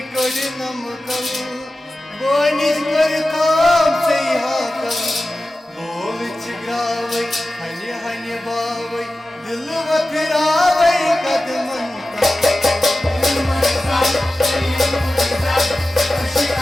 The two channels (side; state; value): both; normal; correlation 0.94